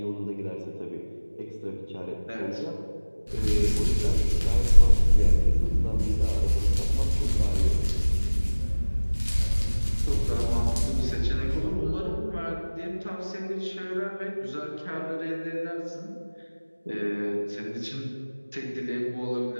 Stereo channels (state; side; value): inverted; both; correlation -1.00